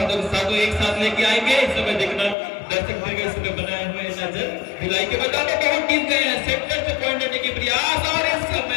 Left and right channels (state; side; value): drops out; right; at 2.4 s